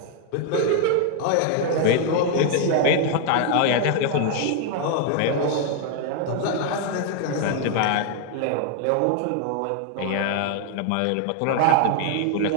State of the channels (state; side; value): different; both; correlation 0.00